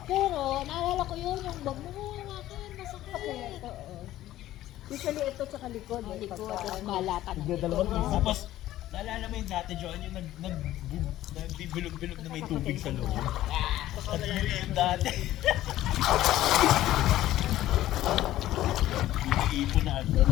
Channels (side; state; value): right; quieter; 14.3 dB